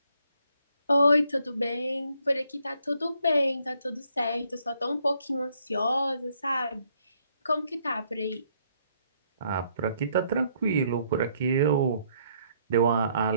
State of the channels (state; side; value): inverted; both; correlation -0.70